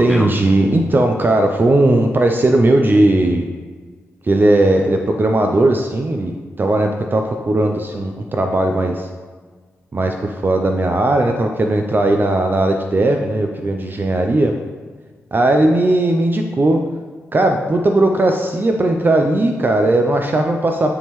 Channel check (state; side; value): normal; both; correlation 0.87